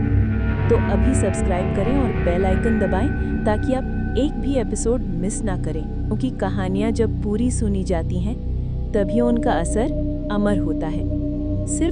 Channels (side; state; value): both; identical; correlation 1.00